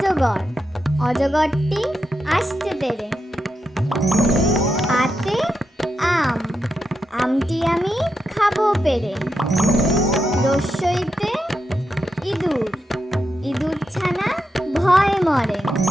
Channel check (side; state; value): both; normal; correlation 0.86